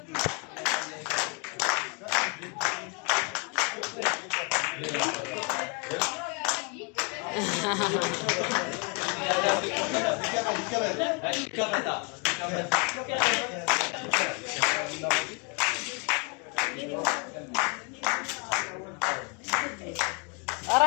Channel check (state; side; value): quieter; right; 34.7 dB